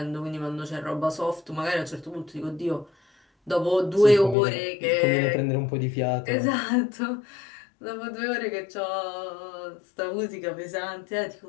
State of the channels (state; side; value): drops out; right; at 4.4 s